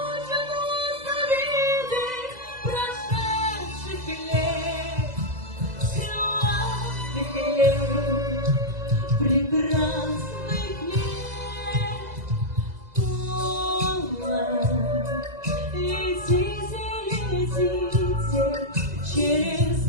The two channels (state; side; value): late; left; 2.0 ms